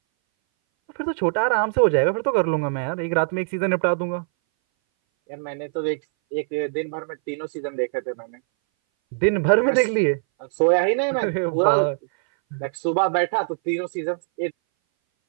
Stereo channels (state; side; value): silent; left; 60 dB below the other